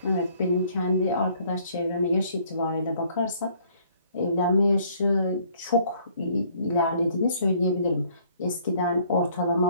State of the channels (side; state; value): both; inverted; correlation -0.62